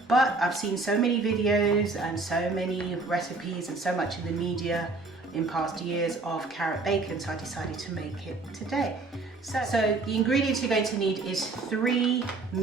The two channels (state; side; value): quieter; left; 3.6 dB